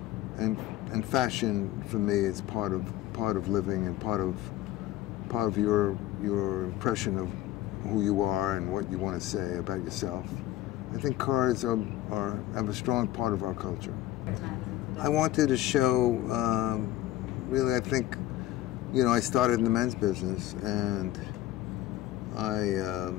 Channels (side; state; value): right; quieter; 14.9 dB